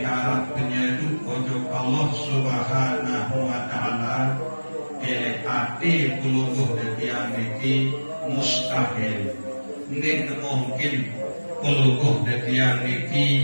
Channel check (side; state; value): both; inverted; correlation -1.00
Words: arah penyedu ojo Allah subhanahu wa ta'ala, ele ati pelungguh detiang niki mustahil. Ini mungkin pelungguh detiang